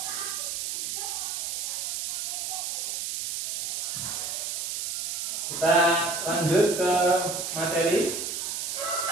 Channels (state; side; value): noise; right; hiss, 2 dB below the sound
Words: Kita lanjut ke materi.